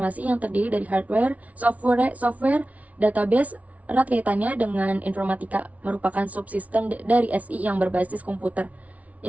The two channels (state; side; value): late; left; 0.069 ms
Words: yang terdiri dari hardware, software, database, erat kaitannya dengan informatika, merupakan subsistem dari SI yang berbasis komputer.